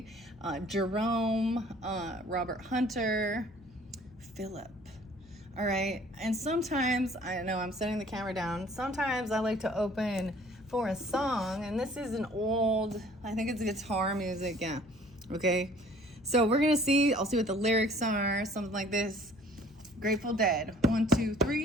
Jerome, Robert Hunter, Philip. All right, and sometimes, I know I'm setting the camera down, sometimes I like to open for a song, and this is an old, I think it's guitar music, yeah. Okay, so we're gonna see, I'll see what the lyrics are, something like this. Grateful Dead, 1, 2,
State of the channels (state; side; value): noise; left; hum, 26 dB below the sound